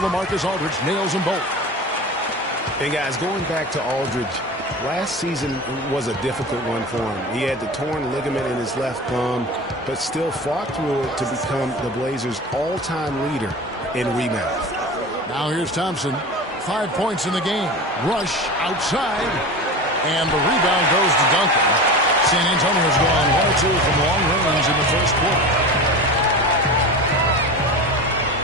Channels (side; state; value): both; normal; correlation 0.31